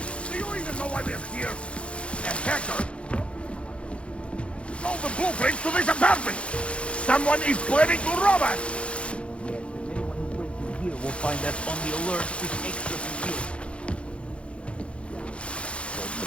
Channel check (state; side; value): late; right; 0.060 ms